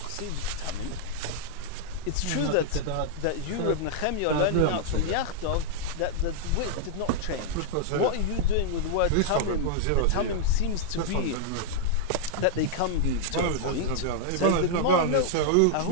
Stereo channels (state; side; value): different; both; correlation -0.01